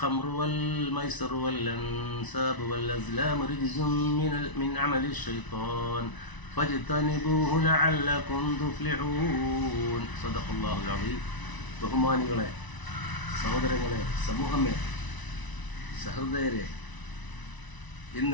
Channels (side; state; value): right; late; 1.0 ms